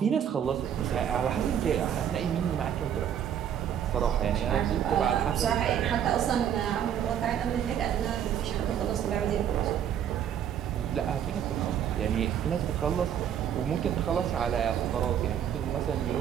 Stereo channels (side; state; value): left; quieter; 9.4 dB